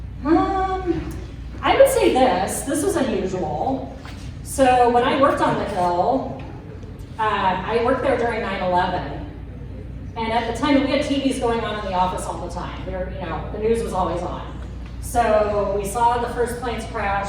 I would say this was unusual. So when I worked on the Hill, I worked there during 9/11. And at the time, we had TVs going on in the office all the time. The news was always on. So we saw the first planes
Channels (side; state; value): both; identical; correlation 1.00